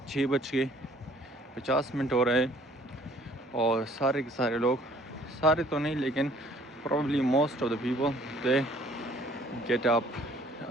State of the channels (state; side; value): normal; both; correlation 0.57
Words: 6:50 हो रहे हैं और सारे के सारे लोग, सारे तो नहीं लेकिन probably most of the people they get up.